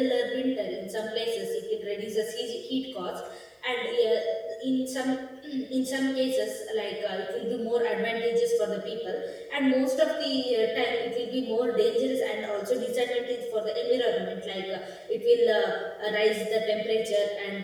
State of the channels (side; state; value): both; identical; correlation 1.00